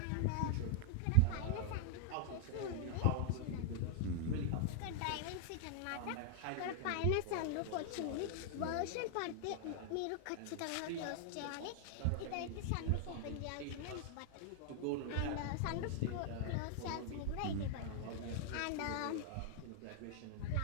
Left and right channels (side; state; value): both; different; correlation 0.00